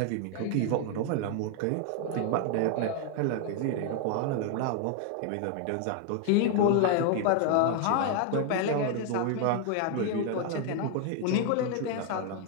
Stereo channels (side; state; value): both; different; correlation 0.00